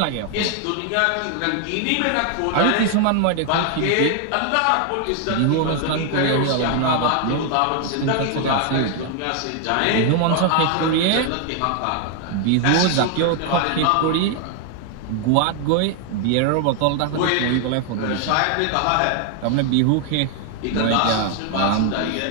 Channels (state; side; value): different; both; correlation 0.00